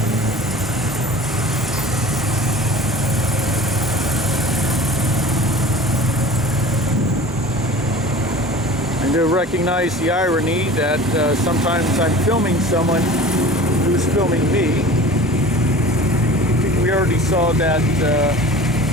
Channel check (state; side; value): normal; both; correlation 0.40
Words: I do recognize the irony that sometimes I'm filming someone who's filming me. I think we already saw that